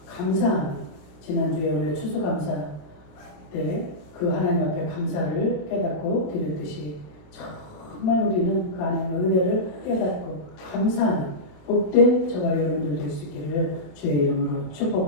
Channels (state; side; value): late; right; 26 ms